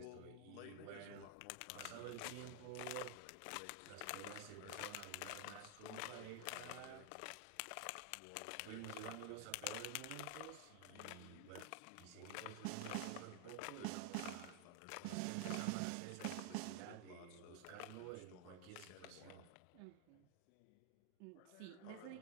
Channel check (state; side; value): different; both; correlation 0.00